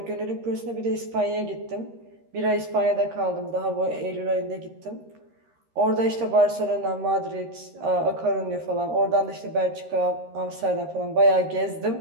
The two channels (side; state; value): left; late; 13 ms